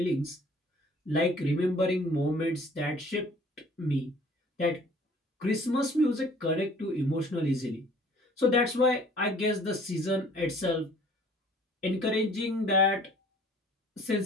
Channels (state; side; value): normal; both; correlation 0.53